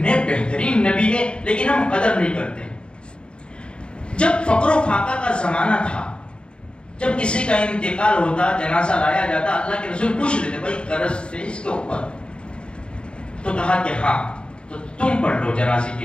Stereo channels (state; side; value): late; right; 0.053 ms